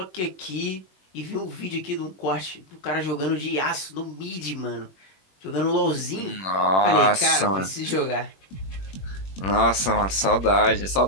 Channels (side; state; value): right; late; 21 ms